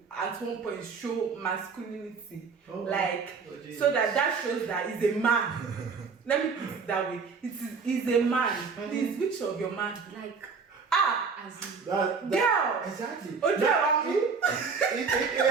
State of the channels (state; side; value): quieter; left; 5.2 dB